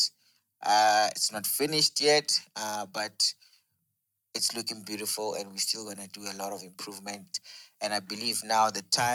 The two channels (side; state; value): both; identical; correlation 1.00